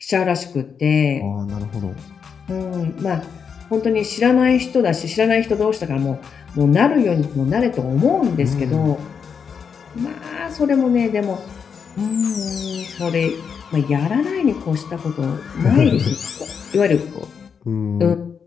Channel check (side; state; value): right; quieter; 6.5 dB